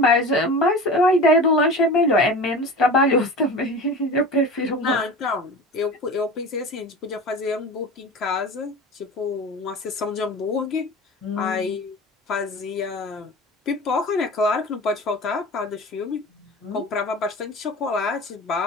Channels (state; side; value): normal; both; correlation 0.33